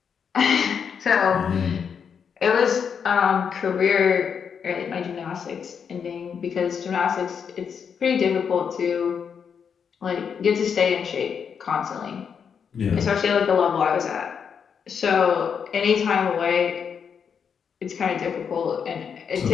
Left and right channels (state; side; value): quieter; right; 6.9 dB